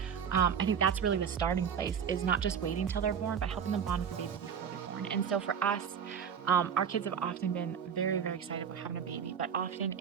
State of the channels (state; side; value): quieter; left; 7.5 dB